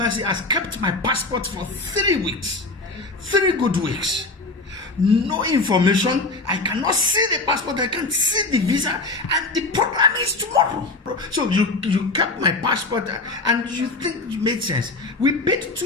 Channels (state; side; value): quieter; right; 3.3 dB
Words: has kept my passport for 3 weeks. 3 good weeks. No information. I cannot see the passport. I can't see the visa. And the program is tomorrow. So you kept my passport and you think it made sense. We paid